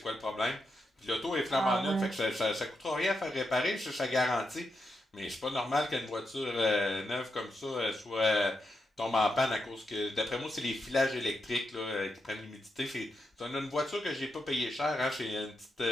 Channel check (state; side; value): normal; both; correlation 0.84